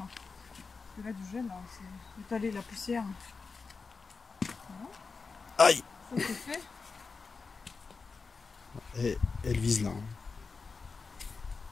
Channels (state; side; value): quieter; right; 4.6 dB